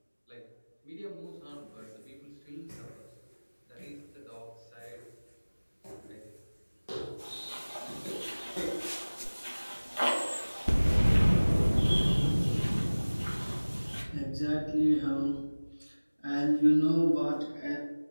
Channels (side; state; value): both; inverted; correlation -1.00